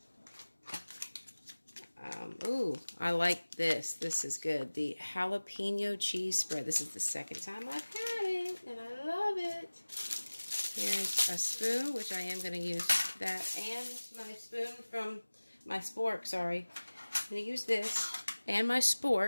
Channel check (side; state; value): both; inverted; correlation -1.00